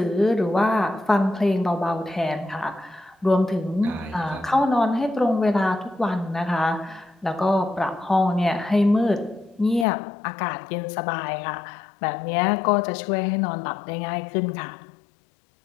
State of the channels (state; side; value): drops out; right; at 9.9 s